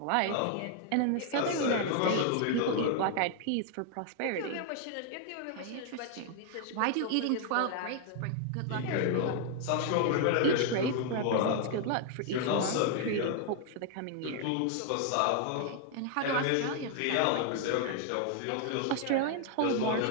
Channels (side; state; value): both; different; correlation 0.00